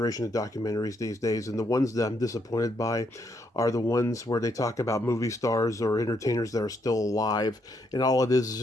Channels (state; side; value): normal; both; correlation 0.75